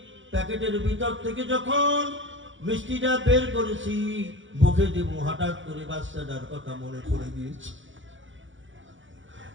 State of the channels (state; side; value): late; left; 0.56 ms